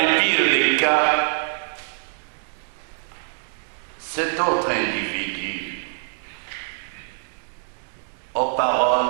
pires des cas, cet autre individu aux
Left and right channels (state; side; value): silent; left; digital silence